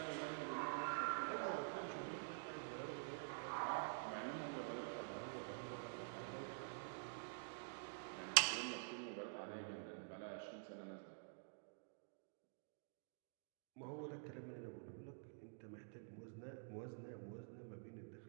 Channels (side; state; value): left; silent; digital silence